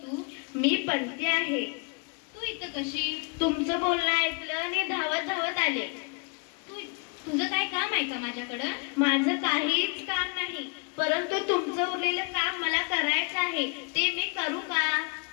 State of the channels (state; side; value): quieter; right; 34.4 dB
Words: तू? मी पंती आहे. तू इथं कशी? तुमचं बोलणं ऐकलं आणि धावत धावत आले. तुझं काय काम आहे का माझ्याकडं? माझं काहीच काम नाही, परंतु तुमचं उरलेलं काम मला करायचं आहे. ते मी करू का?